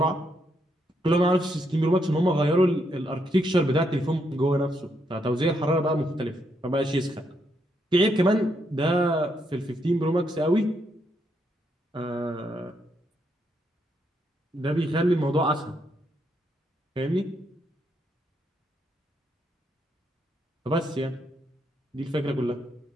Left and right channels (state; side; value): normal; both; correlation 0.77